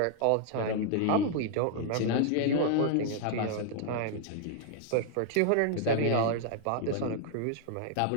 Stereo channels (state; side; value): different; both; correlation -0.01